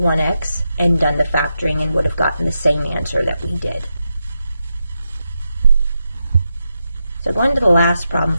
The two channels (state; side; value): inverted; both; correlation -0.87